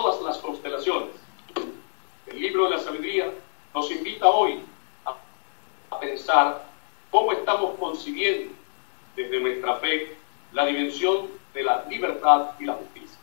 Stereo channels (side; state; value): right; silent; 62 dB below the other